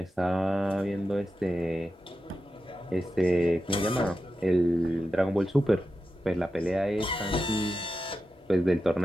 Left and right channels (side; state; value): both; normal; correlation 0.91